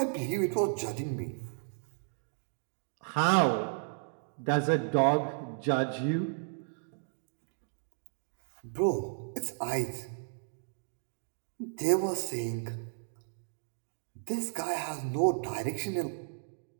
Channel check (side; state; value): left; silent; digital silence